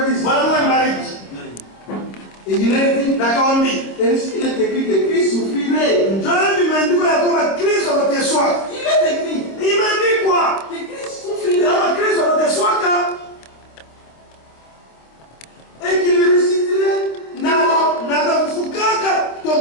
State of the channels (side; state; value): right; late; 26 ms